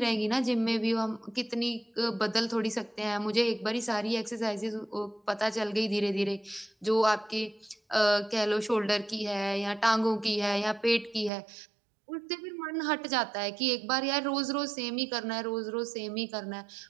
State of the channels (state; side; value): drops out; left; at 11.3 s